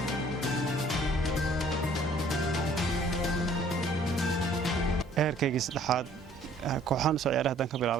heerkayga saddexaad kooxahan soo ciyaaray haddaan ka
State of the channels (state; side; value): normal; both; correlation 0.57